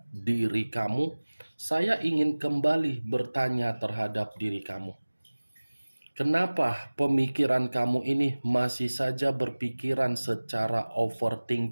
diri kamu, saya ingin kembali bertanya terhadap diri kamu. Kenapa pemikiran kamu ini masih saja berpikiran secara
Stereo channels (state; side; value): inverted; both; correlation -1.00